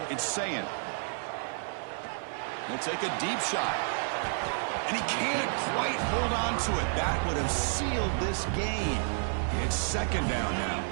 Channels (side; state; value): left; silent; 57 dB below the other